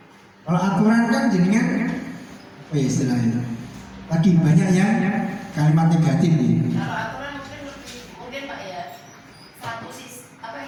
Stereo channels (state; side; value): identical; both; correlation 1.00